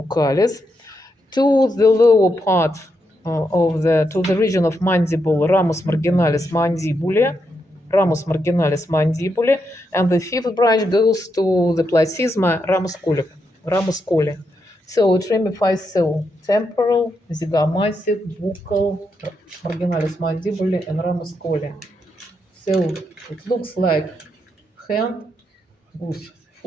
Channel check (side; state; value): both; normal; correlation 0.82